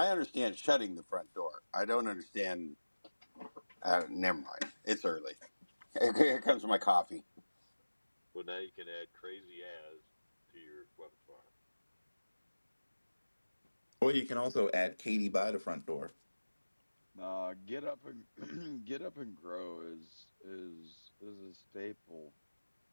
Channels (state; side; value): inverted; both; correlation -1.00